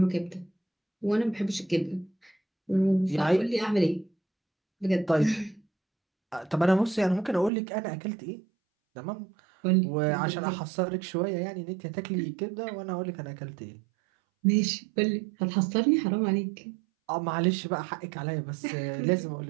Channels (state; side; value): drops out; left; at 7.5 s